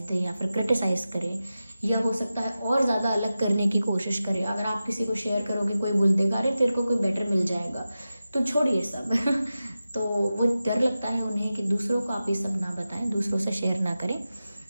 दें, या फिर क्रिटिसाइज़ करें, या हो सकता है और ज़्यादा अलग करने की कोशिश करें। अगर आप किसी को शेयर करोगे, कोई बोल देगा अरे तेरे को कोई बेटर मिल जाएगा, तो छोड़िए सब तो वो डर लगता है उन्हें कि दूसरों को आप ये सब ना बताएं, दूसरों से शेयर ना करें।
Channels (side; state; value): both; inverted; correlation -0.93